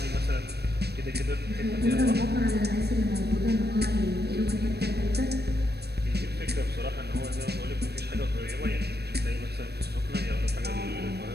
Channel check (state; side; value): late; left; 0.47 ms